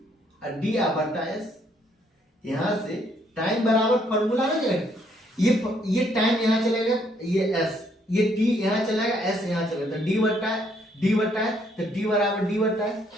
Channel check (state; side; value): normal; both; correlation 0.69